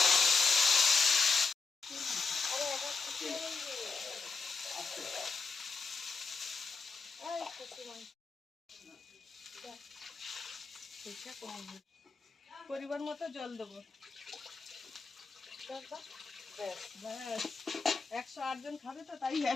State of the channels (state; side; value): quieter; right; 4.5 dB